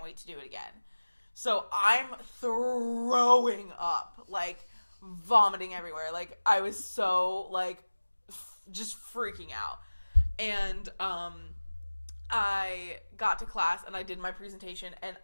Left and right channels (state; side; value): inverted; both; correlation -1.00